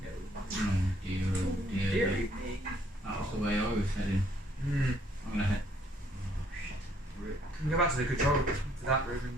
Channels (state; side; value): normal; both; correlation 0.66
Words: Dear. That was the way I was heading. Hmm. I'm gonna head. Can we go back to the control room, to that room